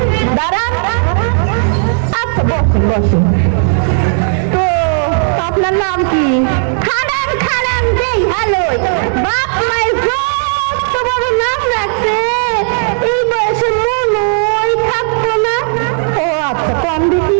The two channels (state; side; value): silent; left; digital silence